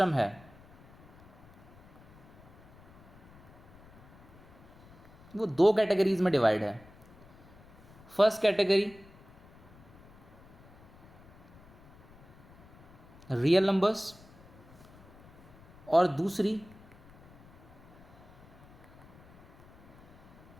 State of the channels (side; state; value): left; noise; rumble, 22 dB below the sound